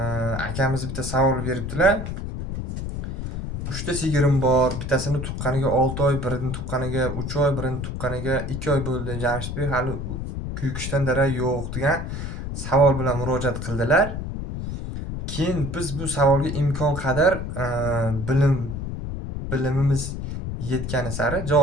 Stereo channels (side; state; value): left; noise; rumble, 5 dB below the sound